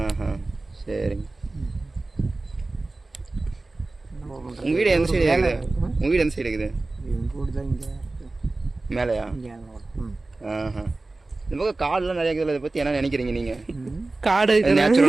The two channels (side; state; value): left; quieter; 3.2 dB